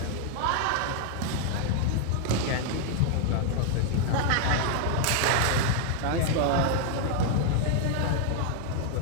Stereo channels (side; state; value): both; different; correlation 0.00